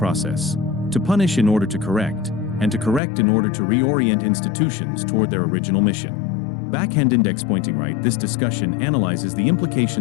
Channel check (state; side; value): drops out; right; at 3.0 s